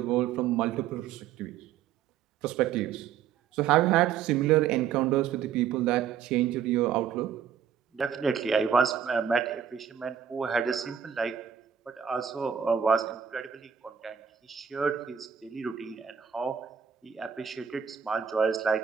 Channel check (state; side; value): quieter; left; 8.2 dB